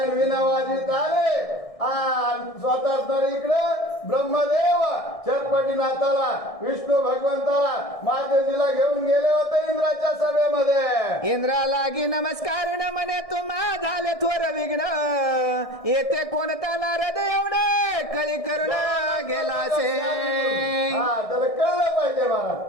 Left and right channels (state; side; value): late; right; 1.6 ms